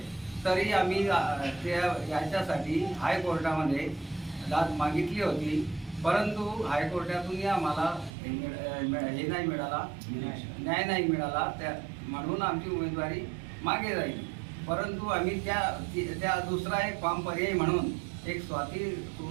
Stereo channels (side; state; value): left; drops out; at 8.1 s